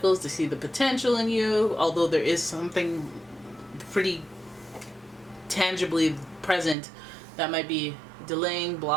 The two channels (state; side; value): drops out; left; at 6.8 s